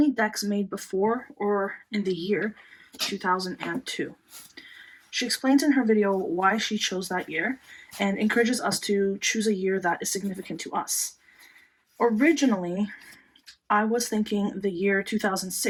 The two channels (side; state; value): both; identical; correlation 1.00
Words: decks made before or in the year 2002. She explains in her video why she chose that year and encourages us to choose a year that is significant to us. Originally, I was thinking the year